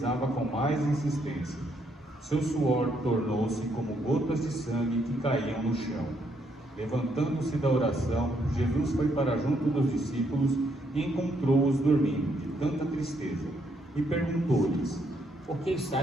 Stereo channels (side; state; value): both; normal; correlation 0.73